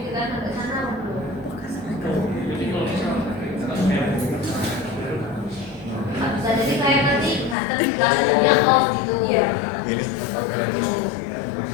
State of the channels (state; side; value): drops out; right; at 7.6 s